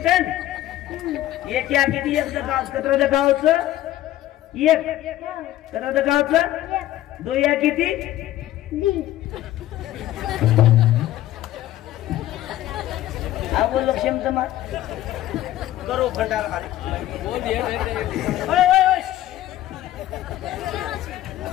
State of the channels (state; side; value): quieter; right; 14.2 dB